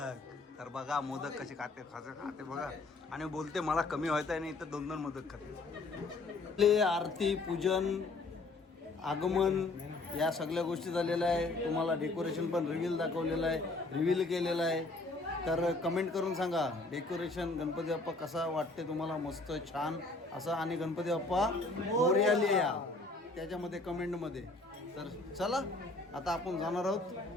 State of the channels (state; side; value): quieter; right; 3.2 dB